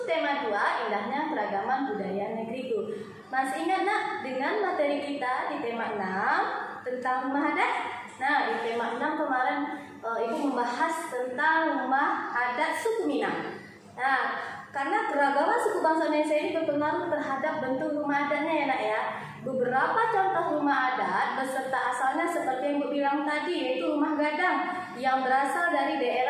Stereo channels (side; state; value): both; identical; correlation 1.00